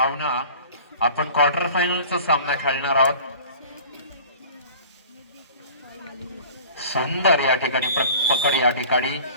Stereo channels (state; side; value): inverted; both; correlation -0.44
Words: आपण क्वार्टर फायनलचा सामना खेळणार आहोत. सुंदर या ठिकाणी पकड या ठिकाणी